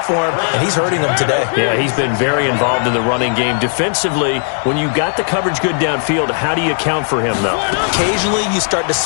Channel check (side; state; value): right; silent; 58 dB below the other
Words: for him, and he's hurting them today. Yeah, he's been very involved in the running game. Defensively, when you got the coverage good downfield, how do you account for him, though? Occasionally, you start to